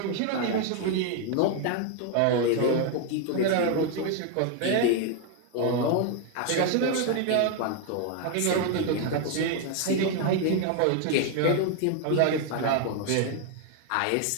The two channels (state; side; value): different; both; correlation 0.00